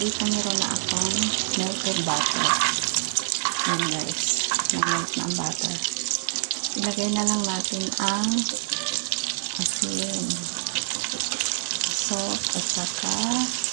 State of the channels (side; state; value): left; silent; digital silence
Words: meron na akong melted butter. Yan guys. Nag-melt na ang butter. Ilagay na lang natin ang asin, salt, at saka